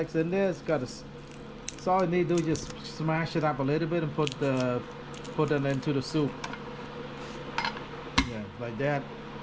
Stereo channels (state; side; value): identical; both; correlation 1.00